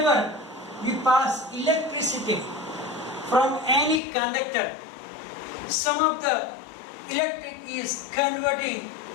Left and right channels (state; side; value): drops out; right; at 4.0 s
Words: we pass electricity from any conductor, some of the electric is converting